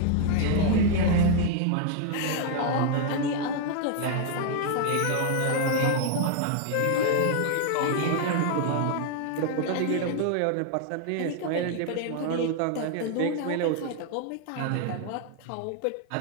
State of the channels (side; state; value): both; different; correlation 0.00